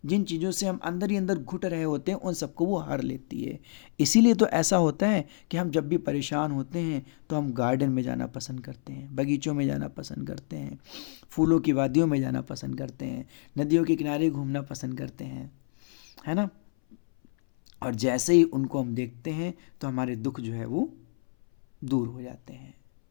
जिन चीज़ों से हम अंदर ही अंदर घुट रहे होते हैं, उन सबको वो हर लेती है। इसीलिए तो ऐसा होता है कि हम जब भी परेशान होते हैं तो हम गार्डन में जाना पसंद करते हैं, बगीचों में जाना पसंद करते हैं, फूलों की वादियों में जाना पसंद करते हैं, नदियों के किनारे घूमना पसंद करते हैं, है ना। और जैसे ही उनको हम देखते हैं तो हमारे दुख जो है वो दूर हो जाते हैं।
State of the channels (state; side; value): silent; right; 59 dB below the other